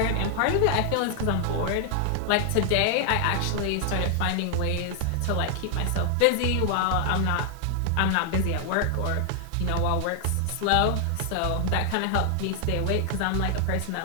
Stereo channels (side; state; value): both; different; correlation 0.00